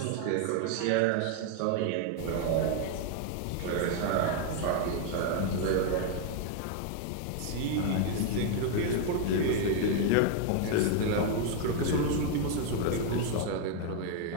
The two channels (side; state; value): both; different; correlation 0.00